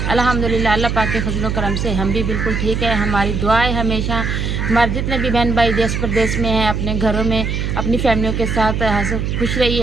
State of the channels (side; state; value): right; noise; hum, 1 dB below the sound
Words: अल्हम्दुलिल्लाह अल्लाह पाक के फजल करम से हम भी बिल्कुल ठीक है। हमारी दुआ है हमेशा हमारे जितने भी बहन भाई देश प्रदेश में हैं, अपने घरों में अपनी फैमिलियों के साथ खुश